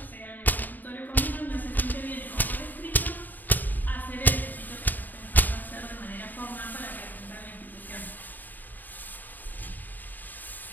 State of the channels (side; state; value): right; late; 0.087 ms